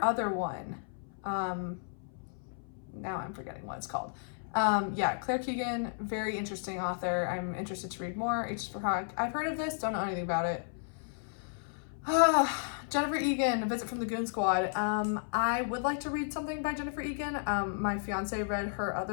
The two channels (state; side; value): silent; right; 56 dB below the other